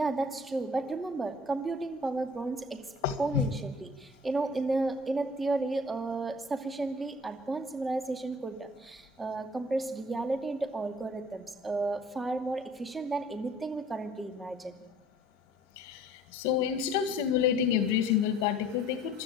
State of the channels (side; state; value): both; normal; correlation 0.53